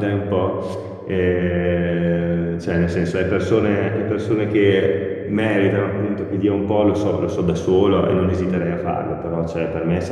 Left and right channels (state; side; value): identical; both; correlation 1.00